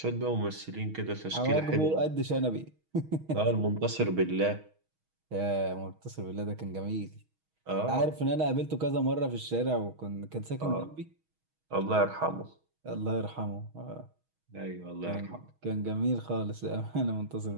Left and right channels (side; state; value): left; late; 6.3 ms